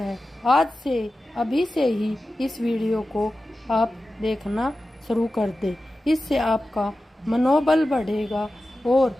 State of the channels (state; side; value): normal; both; correlation 0.94